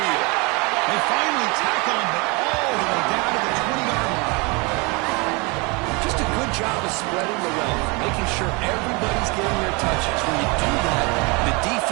They finally tackle him, but all the way down to the 20-yard line. Just a good job of spreading the wealth, making sure everybody's getting their touches. When you do that, the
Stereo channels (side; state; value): left; quieter; 28.7 dB